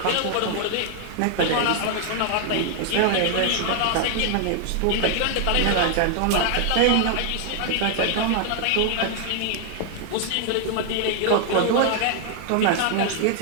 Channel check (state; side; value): different; both; correlation 0.00